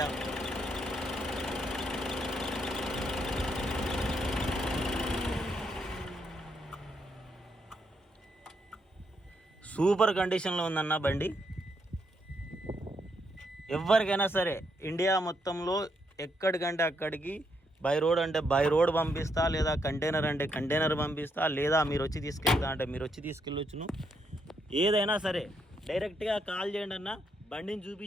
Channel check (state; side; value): normal; both; correlation 0.77